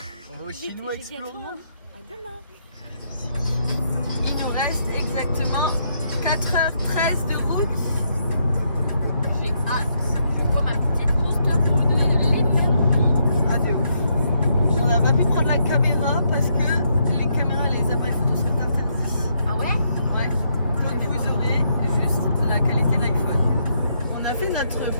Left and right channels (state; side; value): inverted; both; correlation -0.76